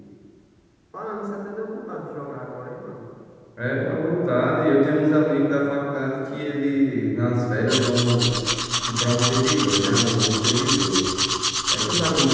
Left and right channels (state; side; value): identical; both; correlation 1.00